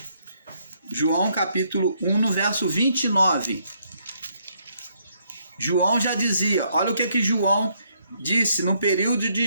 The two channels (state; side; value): inverted; both; correlation -0.72